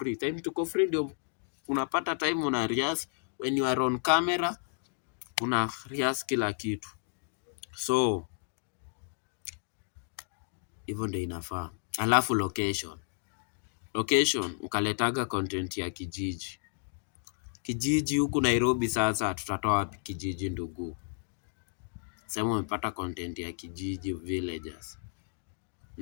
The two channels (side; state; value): right; silent; digital silence